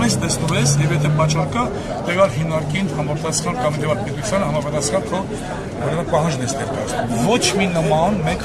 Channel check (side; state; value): both; identical; correlation 1.00